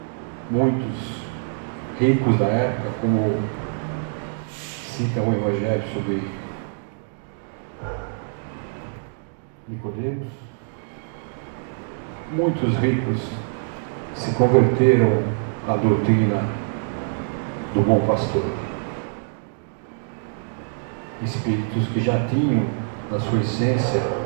Muitos ricos da época, como cita o Evangelho sobre Nicodemos, muitos ricos se converteram à doutrina do bom pastor. Espíritos que já tinham na sua essência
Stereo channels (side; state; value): left; silent; digital silence